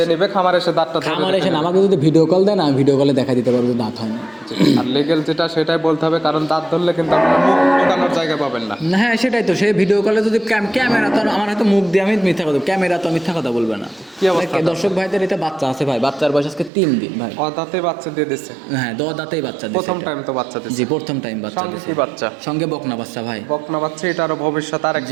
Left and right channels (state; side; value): drops out; left; at 16.7 s